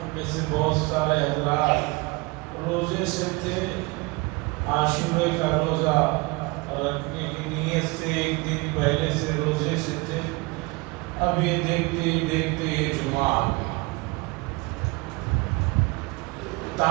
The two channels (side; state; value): left; quieter; 25.1 dB